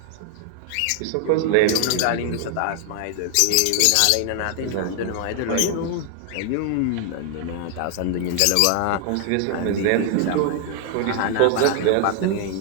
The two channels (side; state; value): both; different; correlation 0.00